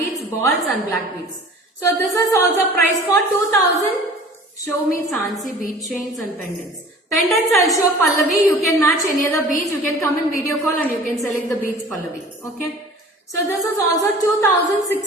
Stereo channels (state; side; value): normal; both; correlation 0.45